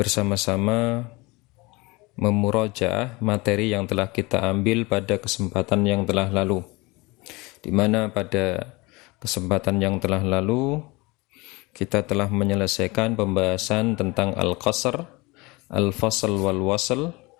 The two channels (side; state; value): right; quieter; 24.0 dB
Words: memurajaah materi yang telah kita ambil pada kesempatan yang telah lalu, di mana pada kesempatan yang telah lalu kita telah menyelesaikan pembahasan tentang al-qasr, al-fasl wal-wasl.